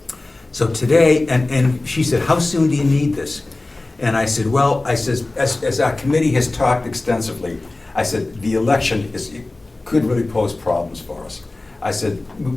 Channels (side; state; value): right; quieter; 3.0 dB